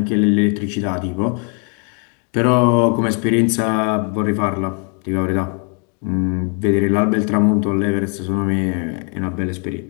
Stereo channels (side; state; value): right; quieter; 39.5 dB